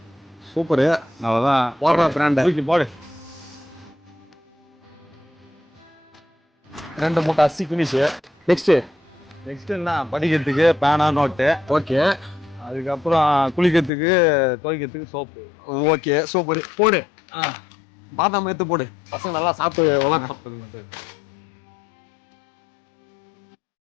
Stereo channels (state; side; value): drops out; right; at 13.9 s